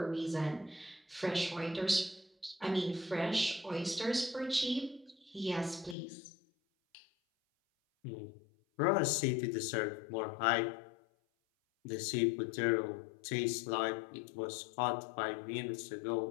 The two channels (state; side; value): drops out; right; at 6.0 s